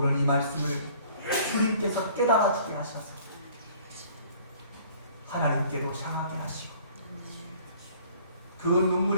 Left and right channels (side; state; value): both; inverted; correlation -0.54